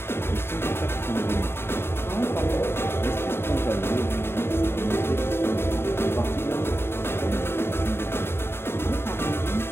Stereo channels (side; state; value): right; late; 0.11 ms